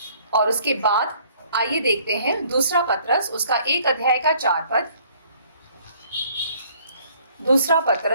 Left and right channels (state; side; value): inverted; both; correlation -0.59